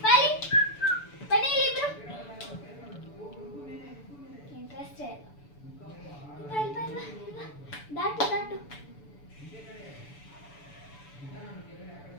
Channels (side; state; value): right; late; 6.9 ms